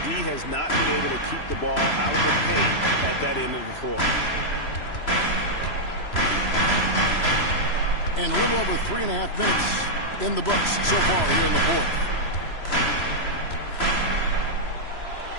D has not been able to keep the ball out of the paint at that end of the floor. And a little over 3.5 minutes in the books so far here in the fourth.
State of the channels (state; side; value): late; right; 3.0 ms